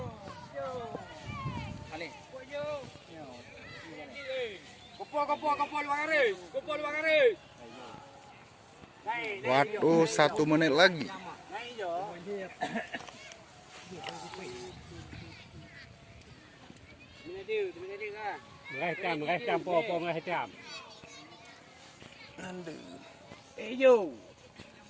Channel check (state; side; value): identical; both; correlation 1.00